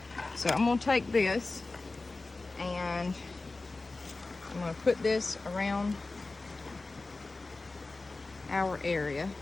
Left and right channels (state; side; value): quieter; right; 3.4 dB